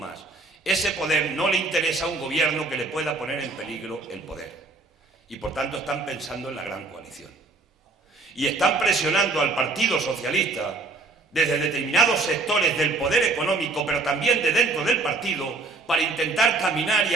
Ese poder no le interesa a un gobierno que le pueda poner en peligro el poder. Y por tanto están pensando en la gran coalición. Y están presionando al Partido Socialista desde determinados sectores del poder económico, pero también de dentro del partido, para intentar caminar y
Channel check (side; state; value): left; quieter; 3.6 dB